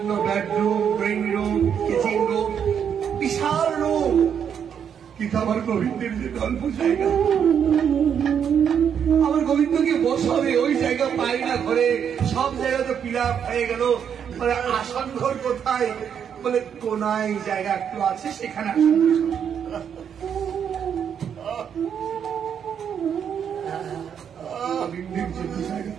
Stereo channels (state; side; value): quieter; left; 8.0 dB